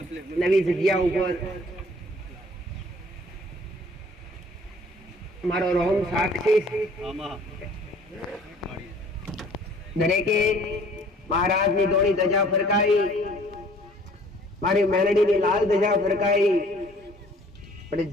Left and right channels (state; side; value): normal; both; correlation 0.54